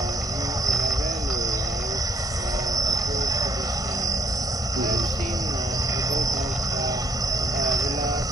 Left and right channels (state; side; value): normal; both; correlation 0.69